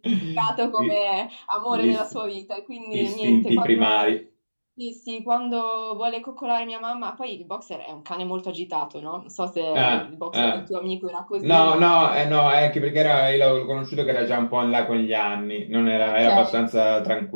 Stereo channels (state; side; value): inverted; both; correlation -1.00